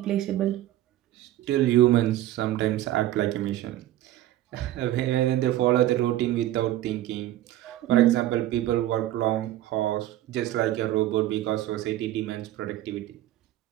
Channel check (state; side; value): quieter; left; 14.2 dB